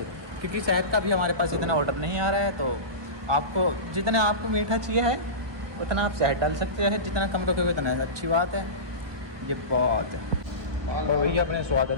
क्योंकि शहद का भी हमारे पास इतना ऑर्डर नहीं आ रहा है। तो आपको जितना आपको मीठा चाहिए है उतना आप शहद डाल सकते हैं, जितना कम रखोगे उतना अच्छी बात है। ये बात है। और भैया अपने स्वाद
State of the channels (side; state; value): left; late; 1.2 ms